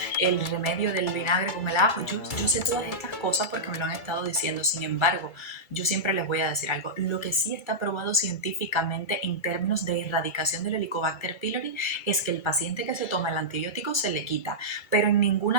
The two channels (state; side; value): late; right; 2.3 ms